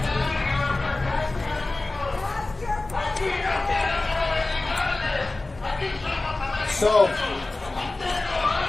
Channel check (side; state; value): right; quieter; 3.1 dB